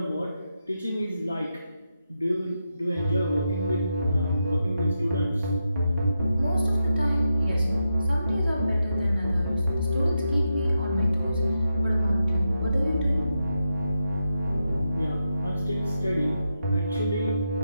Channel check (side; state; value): both; inverted; correlation -0.86